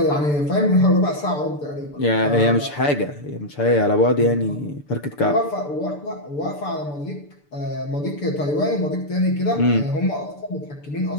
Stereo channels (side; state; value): right; late; 6.8 ms